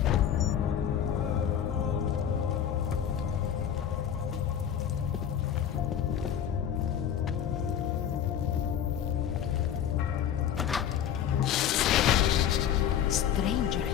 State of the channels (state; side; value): quieter; right; 9.4 dB